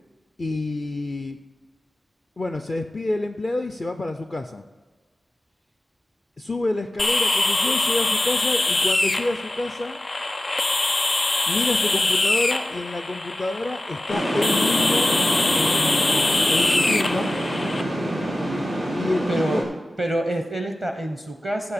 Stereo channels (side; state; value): both; normal; correlation 0.95